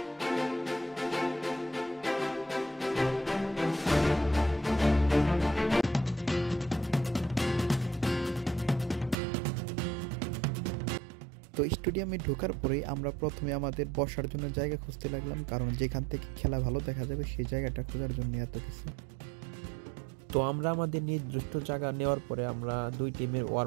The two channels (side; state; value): left; drops out; at 9.2 s